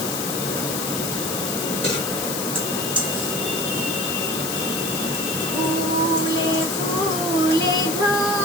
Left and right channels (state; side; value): noise; left; hiss, 3 dB below the sound